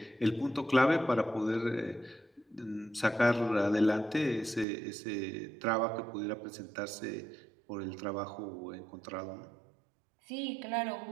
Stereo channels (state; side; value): drops out; left; at 4.7 s